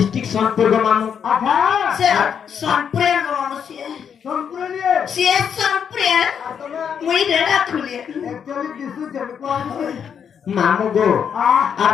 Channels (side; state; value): right; quieter; 7.6 dB